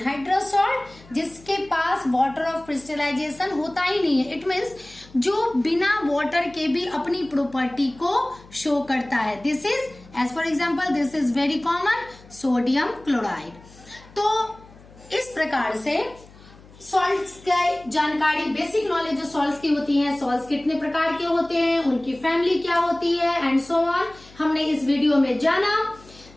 salt, जिसके पास वाटर ऑफ क्रिस्टलाइजेशन होता ही नहीं है। इट मीन्स जो बिना वाटर के भी अपनी प्रॉपर्टी को शो करता है। This is as for example, this is very common sodium chloride. तो इस प्रकार से सॉल्ट्स की जानकारी, बेसिक नॉलेज जो सॉल्ट्स की होती है, सॉल्ट्स कितने प्रकार के होते हैं, उनकी फैमिली क्या होती है एंड सो ऑन, हमने इस वीडियो में जाना।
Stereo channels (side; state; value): left; noise; hum, 23 dB below the sound